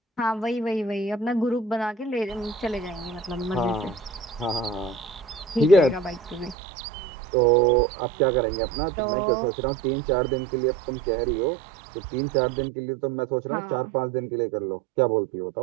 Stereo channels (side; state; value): left; drops out; at 6.6 s